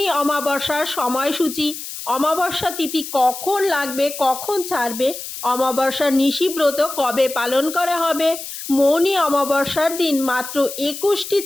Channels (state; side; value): noise; left; hiss, 9 dB below the sound